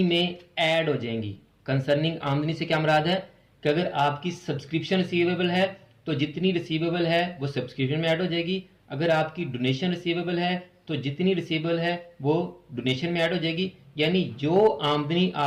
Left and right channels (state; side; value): identical; both; correlation 1.00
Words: में ऐड हो जाएंगी। कंसर्निंग आमदनी से क्या मुराद है कि अगर आपकी सब्सक्रिप्शन रिसीवेबल है तो जितनी रिसीवेबल है वो सब्सक्रिप्शन में ऐड हो जाएगी। अगर आपकी डोनेशन रिसीवेबल है तो जितनी रिसीवेबल है वो डोनेशन में ऐड हो जाएगी। यानी जो आमदनी